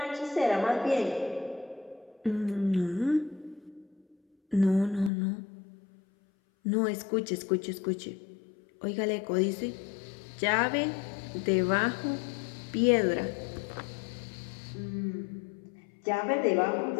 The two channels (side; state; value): right; drops out; at 5.1 s